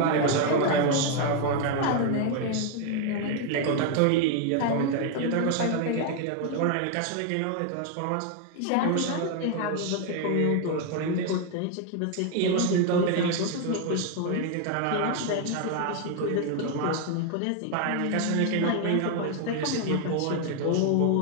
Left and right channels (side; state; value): both; different; correlation 0.01